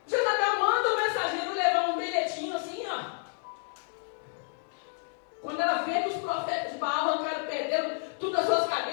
Jezabel manda o mensageiro levar um bilhetinho assim, ó. Quando ela vê que os profetas de Baal arrancaram, perderam tudo as suas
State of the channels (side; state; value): right; silent; 58 dB below the other